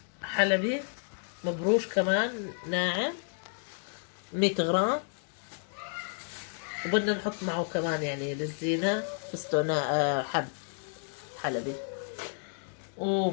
حلبي مبروش كمان ناعم 100 غرام. وبدنا نحط معه كمان يعني للزينة فستق حب حلبي.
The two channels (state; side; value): silent; right; 57 dB below the other